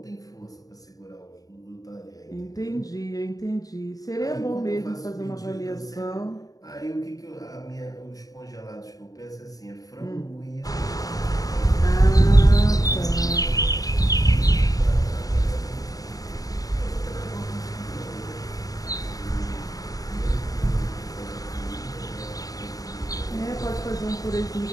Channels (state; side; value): late; right; 0.18 ms